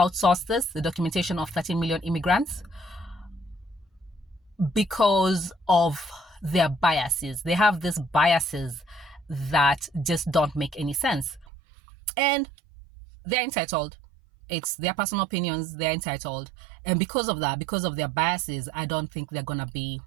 the documentation of 13 million immigrants, because of their biases. They have these biases that just don't make any sense. And they're entitled. It's their personal opinions. They're entitled. And because of that, because of their biases, I don't think they're going to be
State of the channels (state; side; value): drops out; left; at 11.5 s